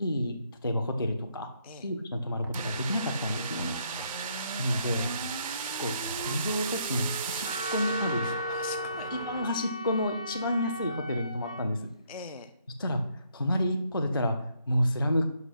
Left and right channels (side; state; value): both; inverted; correlation -0.71